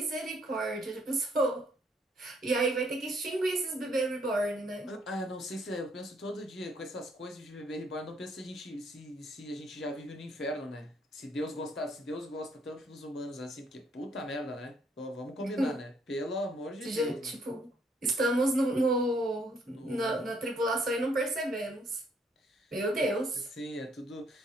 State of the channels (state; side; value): normal; both; correlation 0.68